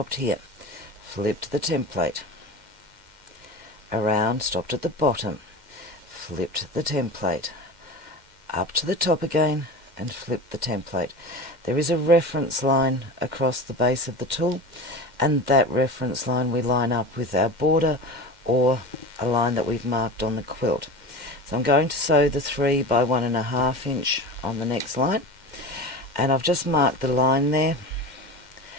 here, flipped the template around, stopped at the bottom, flipped the template up to the top again, and flipped the template. There is a reference line across the base of the tool, and that reference line we line up with our border or a line that we've marked on the quilt. So I'm going to sew the 3 by 1.5 inch on the next line. And I've just marked the line there.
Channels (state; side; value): late; left; 2.1 ms